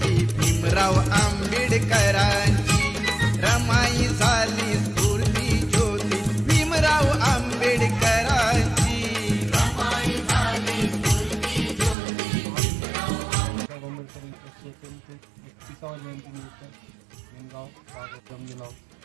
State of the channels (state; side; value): drops out; left; at 12.0 s